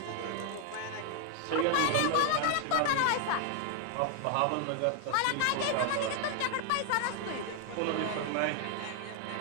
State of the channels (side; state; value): both; different; correlation 0.00